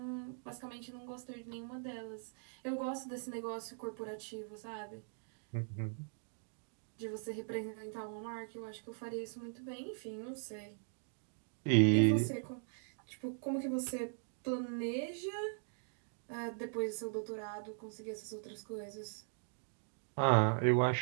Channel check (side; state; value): left; silent; digital silence